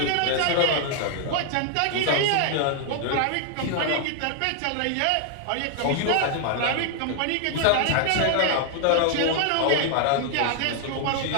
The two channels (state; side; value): different; both; correlation 0.00